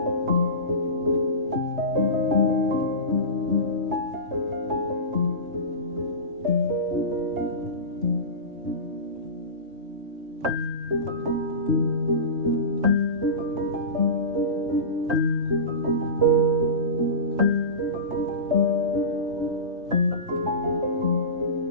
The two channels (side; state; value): left; late; 3.2 ms